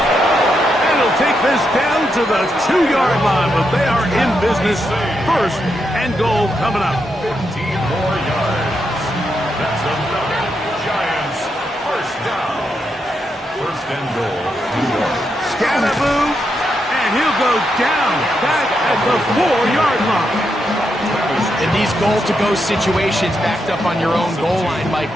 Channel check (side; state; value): both; normal; correlation 0.83